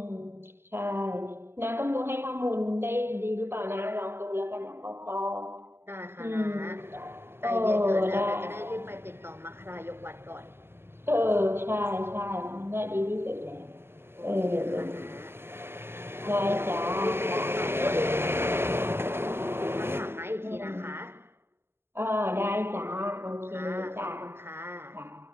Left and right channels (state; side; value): late; left; 0.11 ms